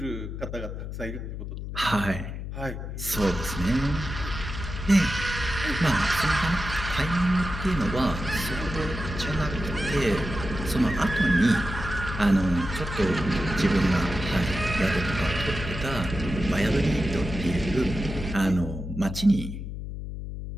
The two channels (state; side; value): noise; left; hum, 7 dB below the sound